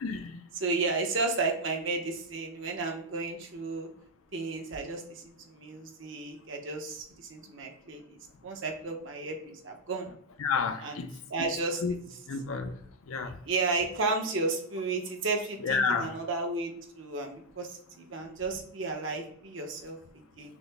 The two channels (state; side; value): normal; both; correlation -0.02